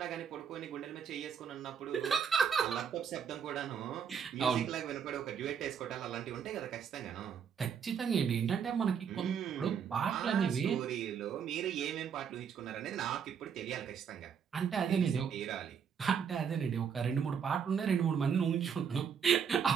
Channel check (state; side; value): quieter; left; 7.2 dB